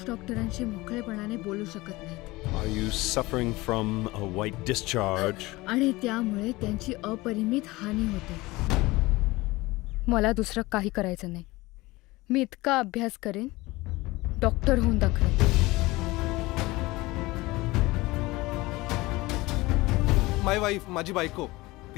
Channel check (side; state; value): right; quieter; 20.8 dB